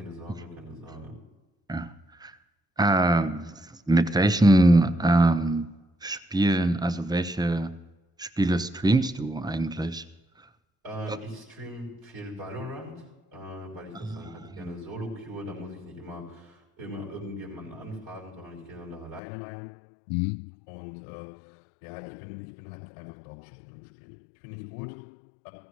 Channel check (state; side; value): drops out; right; at 19.2 s